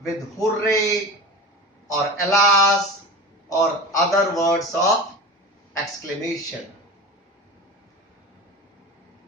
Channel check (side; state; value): both; normal; correlation 0.31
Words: with hooray or alas or other words of exclamation.